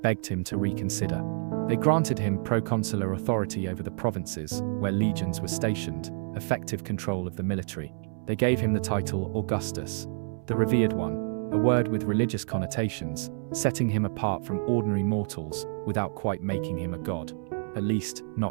begged him to reconsider. They granted him proconsular authority over the provinces where legions were stationed, effective control of the military. They gave him the title Augustus, the revered one, a word with religious connotations, setting him apart from ordinary mortals without quite making him a god. At least,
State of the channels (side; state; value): left; silent; 59 dB below the other